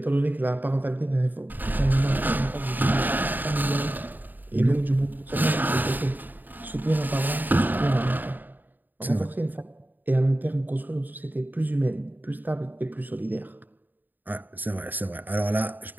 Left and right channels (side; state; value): left; late; 0.088 ms